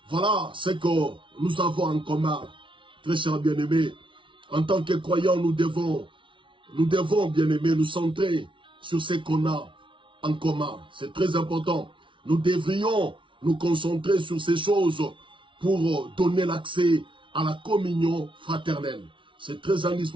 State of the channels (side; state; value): left; late; 0.25 ms